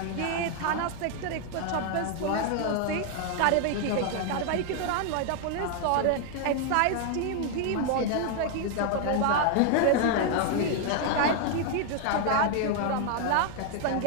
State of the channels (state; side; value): different; both; correlation 0.00